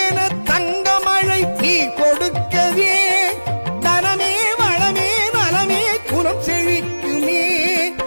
தங்கமழை நீ கொடுக்கவே தனமே வளமே நலமே குலம் செழிக்க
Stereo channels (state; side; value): inverted; both; correlation -1.00